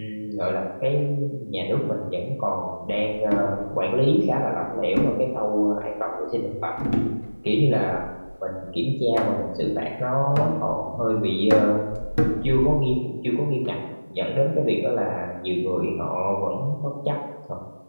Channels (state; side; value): inverted; both; correlation -1.00